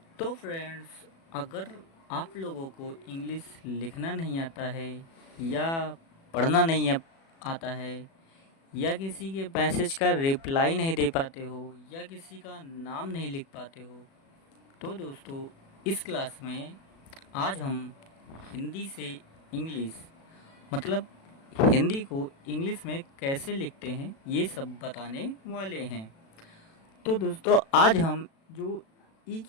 तो फ्रेंड्स, अगर आप लोगों को इंग्लिश लिखना नहीं आता है या पढ़ना नहीं आता है या किसी के मैसेज का रिप्लाई नहीं दे पाते हो या किसी का नाम नहीं लिख पाते हो, तो दोस्तों इस क्लास में आज हम हिंदी से इंग्लिश मतलब हिंदी को इंग्लिश में कैसे लिखते हैं ये सब बताने वाले हैं। तो दोस्तों आज हम जो ई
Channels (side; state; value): right; late; 36 ms